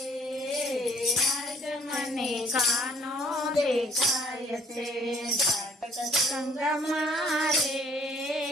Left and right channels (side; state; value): both; normal; correlation 0.59